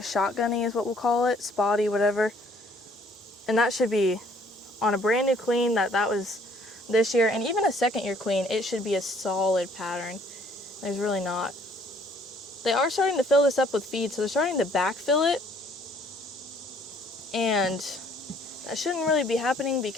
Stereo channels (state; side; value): normal; both; correlation 0.61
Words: is what we'll call it, spotty, whatever. And that should be on a brand new queen that was this year, and even a second year queen, it should be a solid pattern. There's really not. They are starting to fill this up with feed, so they're starting to backfill it, and that shouldn't really be happening